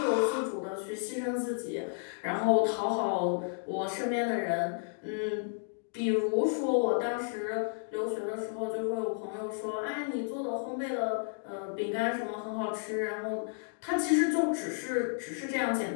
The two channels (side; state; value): right; silent; digital silence